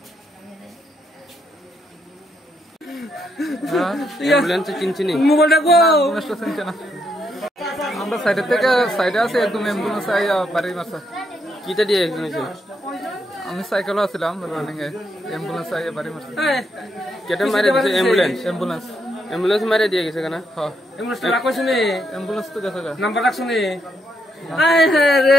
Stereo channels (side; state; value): both; normal; correlation 0.78